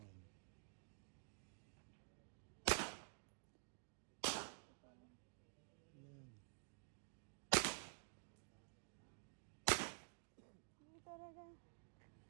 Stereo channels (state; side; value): silent; left; digital silence